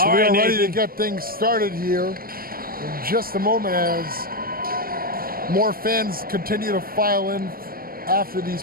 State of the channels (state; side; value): late; left; 0.43 ms